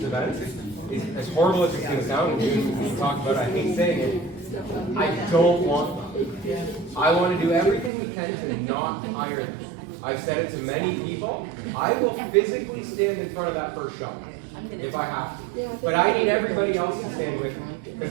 events is as horrible as it's going to sound, and we talk about it, I hate saying it, I don't want them. I want to do everything we can to not hire them. I've said it to many people. I will physically stand in front of that first shop if I have to. But I need everybody else to stand with me. Because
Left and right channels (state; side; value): drops out; left; at 7.9 s